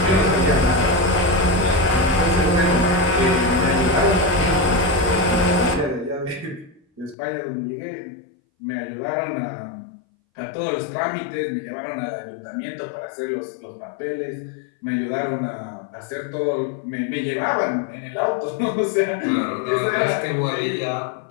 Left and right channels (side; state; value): right; drops out; at 7.2 s